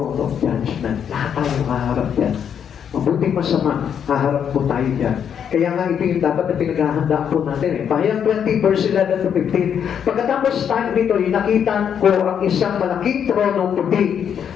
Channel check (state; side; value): quieter; right; 8.2 dB